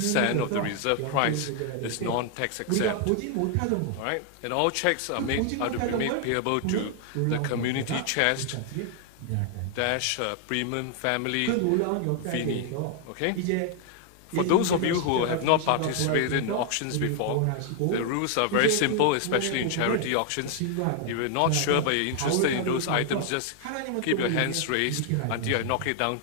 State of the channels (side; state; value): both; different; correlation 0.00